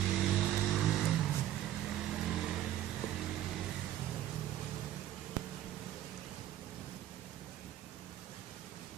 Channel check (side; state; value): left; quieter; 12.5 dB